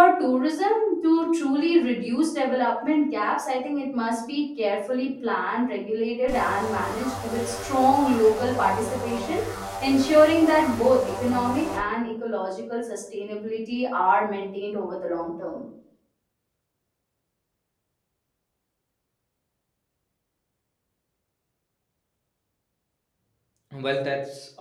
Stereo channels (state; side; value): identical; both; correlation 1.00